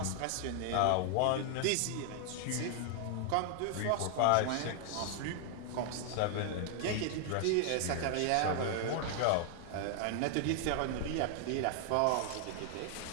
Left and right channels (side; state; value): both; different; correlation 0.00